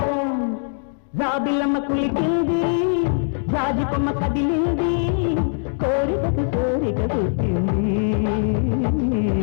జాబిలమ్మ కులికింది జాజి కొమ్మ కదిలింది కోరికకు కోరిక పుట్టింది.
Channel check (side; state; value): right; silent; digital silence